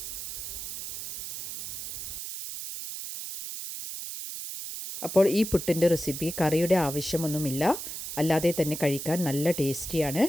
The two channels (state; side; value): noise; right; hiss, 7 dB below the sound